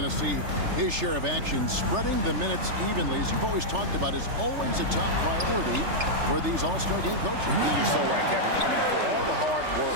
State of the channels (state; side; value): late; left; 3.3 ms